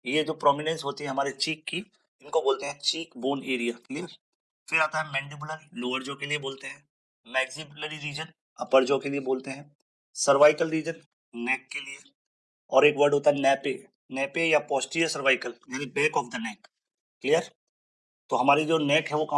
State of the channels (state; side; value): identical; both; correlation 1.00